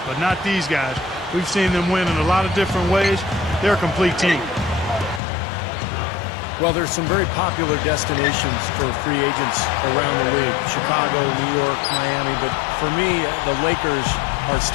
but not these guys. We've seen them win in a lot of different ways. They're a complete team. Well, there's some very popular destinations for free agents around the league. Chicago, New York, Miami. But for me, the Lakers are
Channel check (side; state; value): right; drops out; at 5.2 s